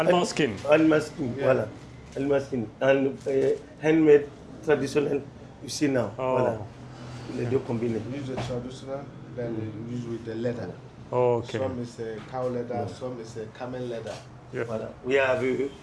skin. Animal skin, voilà. Animal skin. And handmade, traditional, you see now. Voilà. Les deux combinés. We use the traditional, then we use with the leather. Oh, okay. Some is cow leather, some is camel leather. Yeah. Voilà. We have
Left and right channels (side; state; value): both; identical; correlation 1.00